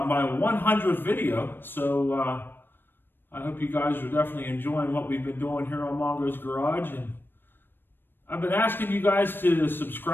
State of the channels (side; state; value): right; late; 0.097 ms